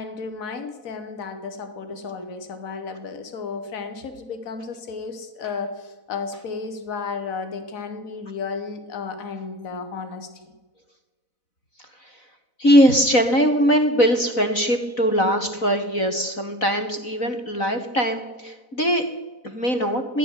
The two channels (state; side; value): late; right; 4.0 ms